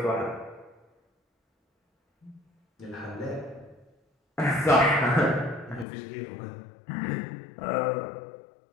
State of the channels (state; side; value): drops out; right; at 5.9 s